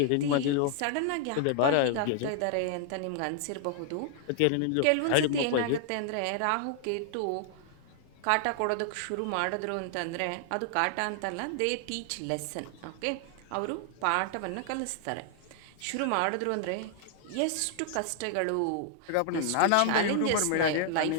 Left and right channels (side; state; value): both; different; correlation 0.00